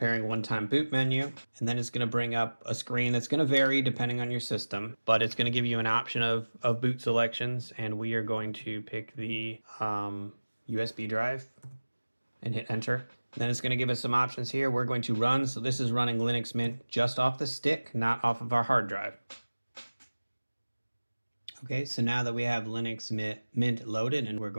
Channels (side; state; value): both; inverted; correlation -1.00